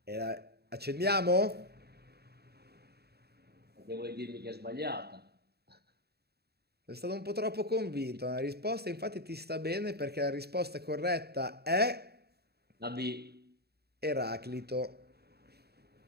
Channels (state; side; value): late; left; 0.47 ms